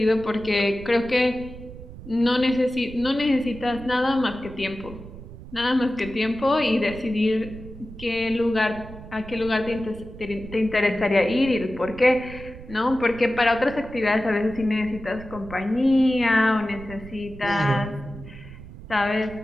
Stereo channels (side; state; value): right; noise; rumble, 15 dB below the sound